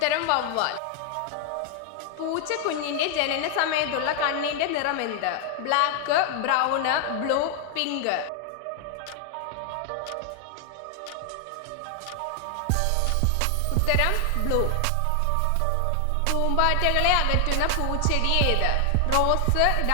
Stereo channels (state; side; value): different; both; correlation 0.00